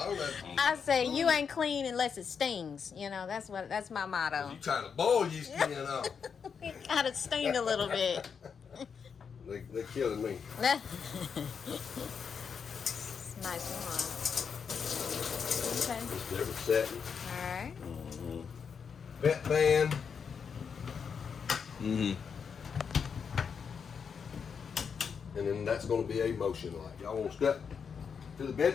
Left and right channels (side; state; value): right; quieter; 6.4 dB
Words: know. I say you ain't clean unless it stings. That's my motto. You trying to boil your skin off. It gotta sting a little bit. They're killing me. Nice one. Okay. Just different setting. Alright. Vet band. and then that's going to be a motion light. Y'all want to step to the